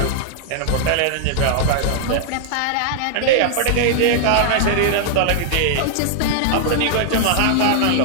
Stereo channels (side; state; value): both; different; correlation -0.01